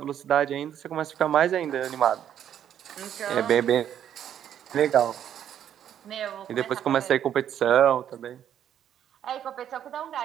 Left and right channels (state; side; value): quieter; left; 10.0 dB